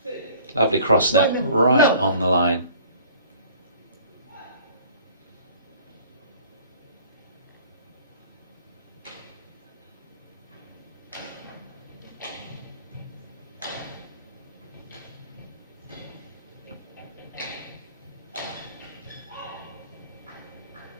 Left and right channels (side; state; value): both; inverted; correlation -0.50